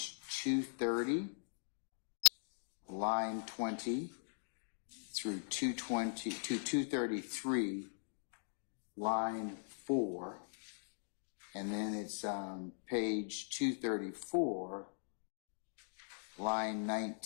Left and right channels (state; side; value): silent; right; digital silence